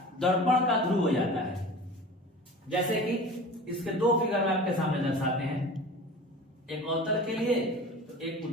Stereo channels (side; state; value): both; normal; correlation 0.38